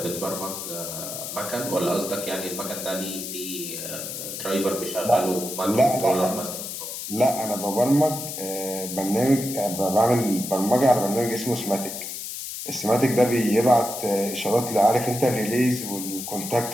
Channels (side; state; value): left; noise; hiss, 7 dB below the sound